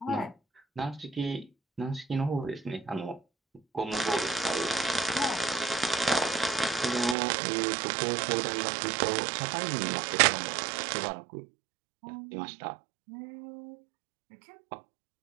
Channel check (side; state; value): left; drops out; at 7.2 s